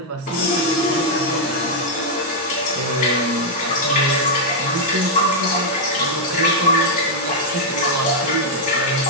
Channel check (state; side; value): normal; both; correlation -0.03